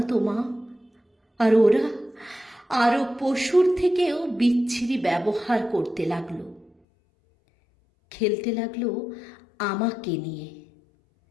তো মা। আর ওরা আরো পশুর থেকেও বিচ্ছিরি ব্যবহার করতে লাগলো, খেলতে লাগলো আমাকে নিয়ে।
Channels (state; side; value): drops out; right; at 6.7 s